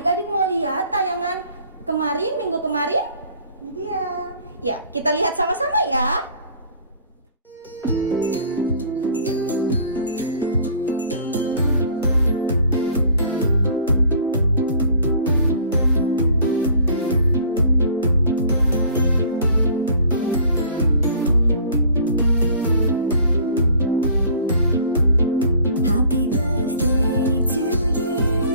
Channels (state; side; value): inverted; both; correlation -0.51